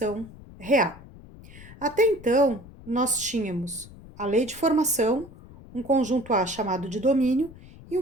real. Até então, nós tínhamos a lei de formação, um conjunto A chamado de domínio e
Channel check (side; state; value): left; noise; rumble, 19 dB below the sound